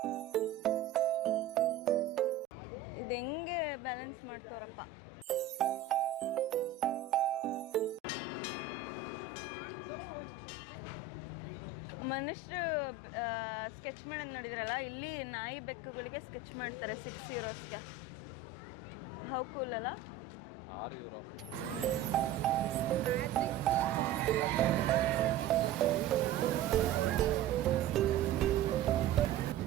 ಇದು ಹೆಂಗೆ ಬ್ಯಾಲೆನ್ಸ್ ಮಾಡ್ತಾರಪ್ಪ. ಮನುಷ್ಯರು ಸ್ಕೆಚ್ ಮಾಡೋದು ನೋಡಿದ್ರಲ್ಲ, ಇಲ್ಲಿ ನಾಯಿ ಬೆಕ್ಕುಗಳಿಗೆ ಸ್ಕೆಚ್ ಮಾಡ್ತಾರೆ 6 euros. ಹೌ ಕೂಲ್ ಅಲ್ಲ? 6 euro.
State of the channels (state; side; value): quieter; left; 6.6 dB